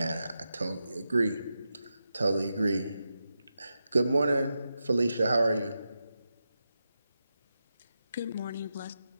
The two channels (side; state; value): both; inverted; correlation -0.89